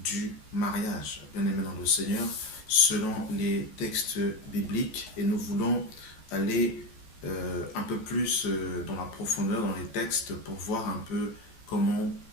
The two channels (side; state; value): right; late; 14 ms